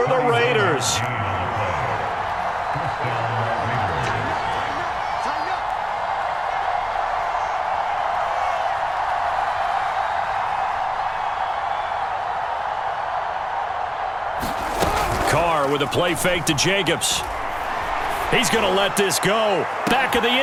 the Raiders. Carr with a play fake to Jacobs. He's going to let this go. Back of the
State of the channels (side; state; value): both; identical; correlation 1.00